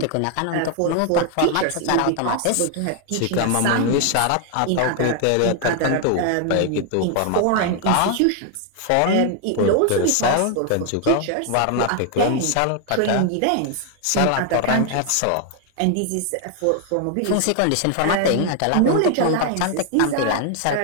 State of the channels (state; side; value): different; both; correlation 0.00